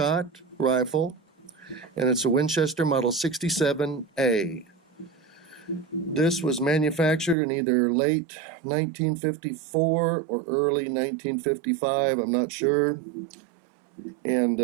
rifle and it's a Winchester Model 67A. This was manufactured in either late 1954 or early 1955, I'm not sure. And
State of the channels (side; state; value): left; drops out; at 7.4 s